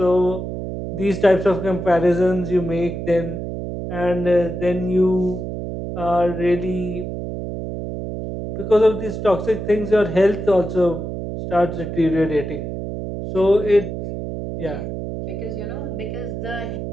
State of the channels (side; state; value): right; noise; hum, 6 dB below the sound